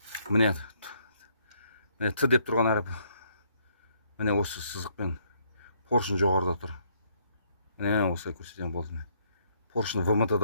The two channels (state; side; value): inverted; both; correlation -0.69